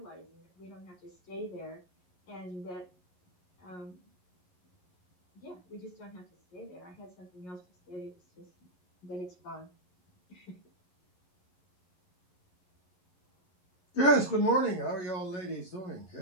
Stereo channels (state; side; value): late; right; 11 ms